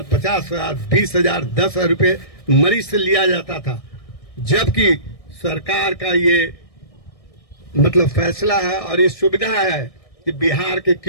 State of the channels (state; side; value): late; right; 1.6 ms